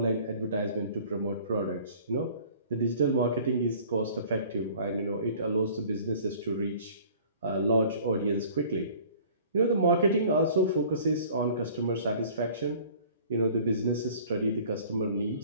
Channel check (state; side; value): inverted; both; correlation -0.50